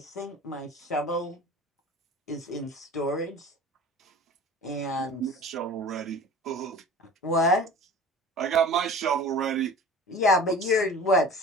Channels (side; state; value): both; normal; correlation 0.40